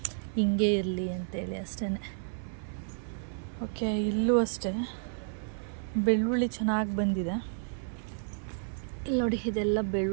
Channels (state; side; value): silent; left; 57 dB below the other